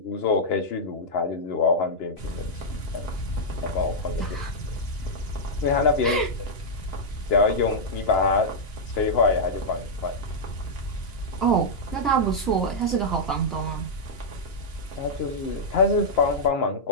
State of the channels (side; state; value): right; late; 2.9 ms